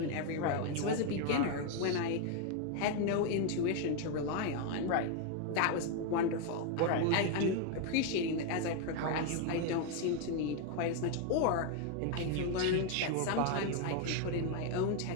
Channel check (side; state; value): both; different; correlation 0.01